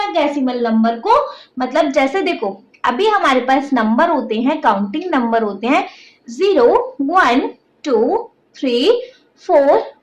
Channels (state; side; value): identical; both; correlation 1.00